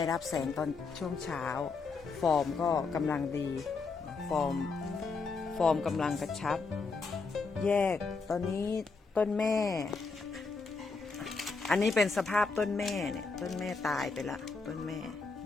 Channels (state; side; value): quieter; right; 4.4 dB